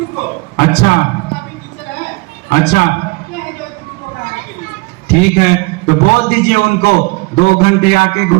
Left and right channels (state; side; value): quieter; left; 26.7 dB